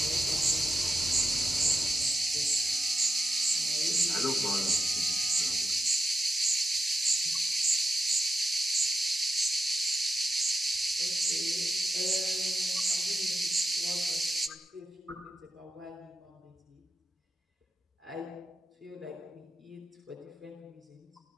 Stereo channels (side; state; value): both; normal; correlation 0.89